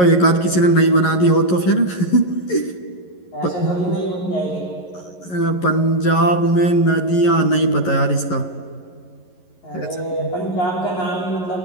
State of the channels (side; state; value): right; late; 11 ms